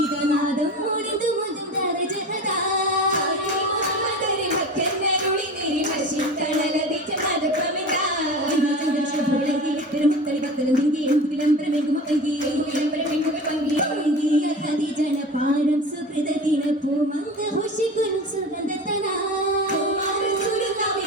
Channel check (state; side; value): normal; both; correlation 0.33